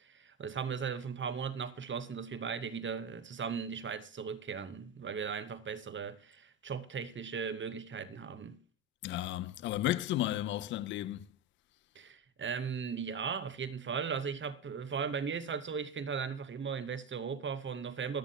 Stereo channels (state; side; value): normal; both; correlation 0.17